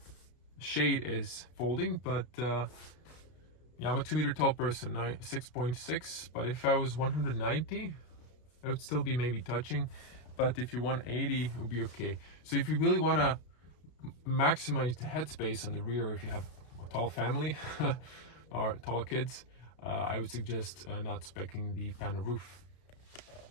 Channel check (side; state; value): right; late; 32 ms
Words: shade is folding. But yeah, I'm a 2 meter tall person, 6.6, but if I was 190, I would still be maybe touching. But if you're 180, it would be okay. So if you really want to maximize the headspace on the rear, if you have a tall family or tall kids, I would suggest not speccing the panel roof.